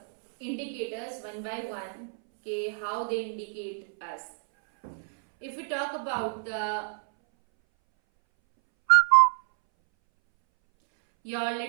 indicators one by one. Okay, how they indicate us. If we talk about your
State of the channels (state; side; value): silent; left; 59 dB below the other